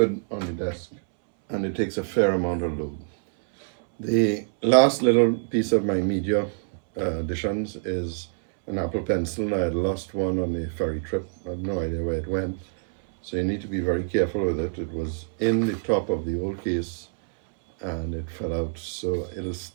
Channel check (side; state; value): left; silent; 61 dB below the other